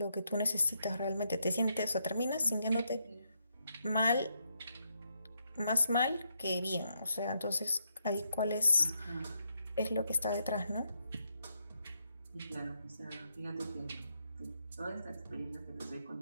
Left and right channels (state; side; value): inverted; both; correlation -0.79